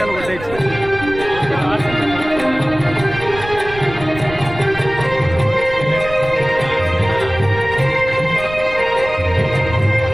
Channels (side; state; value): right; noise; rumble, 13 dB below the sound